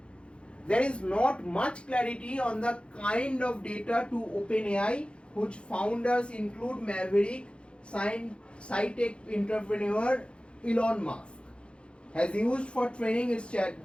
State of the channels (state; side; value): late; right; 0.057 ms